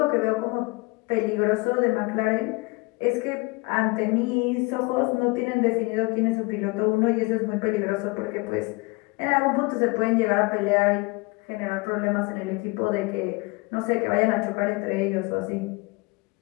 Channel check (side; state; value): right; quieter; 26.0 dB